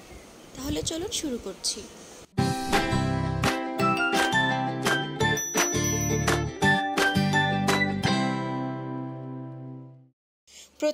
তাহলে চলুন শুরু করছি।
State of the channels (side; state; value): both; identical; correlation 1.00